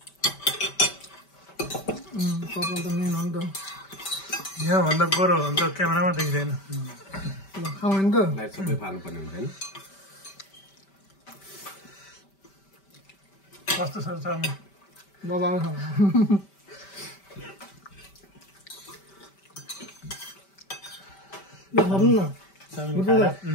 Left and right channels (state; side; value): late; right; 5.1 ms